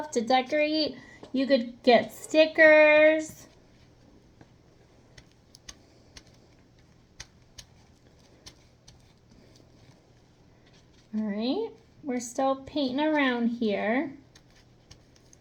to decorate. You could get stickers. All right, we're still painting around here.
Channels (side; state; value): both; identical; correlation 1.00